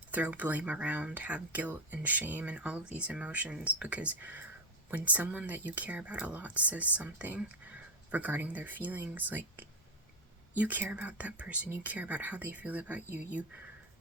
throw blame around, have guilt and shame and all of these emotions, because when someone that you care about a lot says something regarding their feelings, like, you care about that person, you care about how they feel about you,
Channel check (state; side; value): normal; both; correlation 0.10